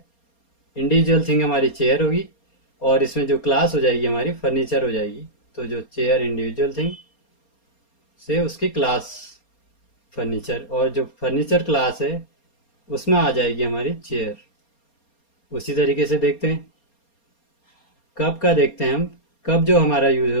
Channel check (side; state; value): right; late; 4.3 ms